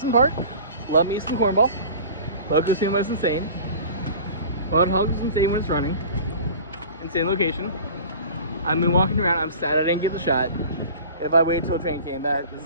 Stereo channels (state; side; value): inverted; both; correlation -0.40